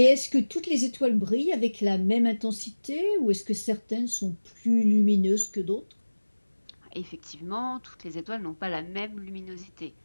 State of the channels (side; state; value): both; inverted; correlation -1.00